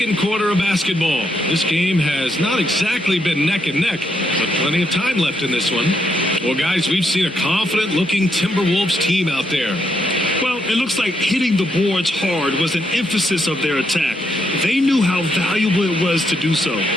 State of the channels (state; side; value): normal; both; correlation 0.77